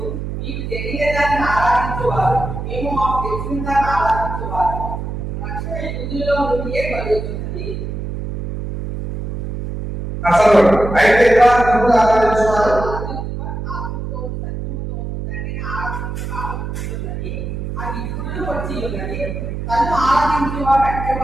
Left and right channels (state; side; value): noise; right; hum, 5 dB below the sound